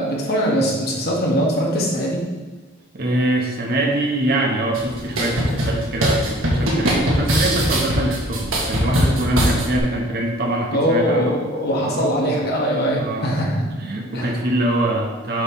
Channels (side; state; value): both; normal; correlation 0.50